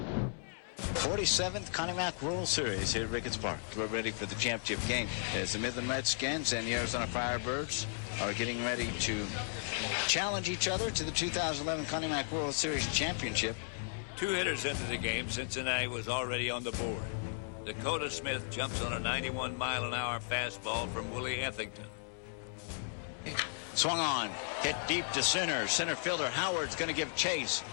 47th Connie Mack World Series here at Ricketts Park. We're ready for the championship game as the Midland Redskins and the Arizona Firebirds are getting ready to challenge each other to the 2011 Connie Mack World Series Championship. 2 hitters into the game, Cincinnati was already on the board. Dakota Smith jumps on a 91-mile-an-hour fastball from Willie Ethington. Swung on, hit deep to center. Center fielder Howard's going to give chase.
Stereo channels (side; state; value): right; silent; digital silence